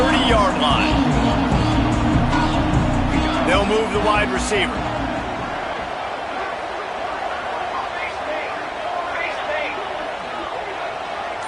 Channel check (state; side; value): identical; both; correlation 1.00